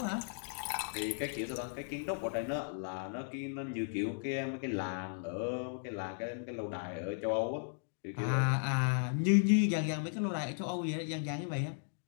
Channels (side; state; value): right; silent; digital silence